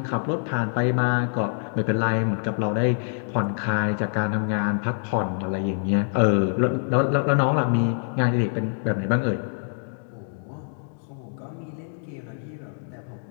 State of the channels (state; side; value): silent; right; digital silence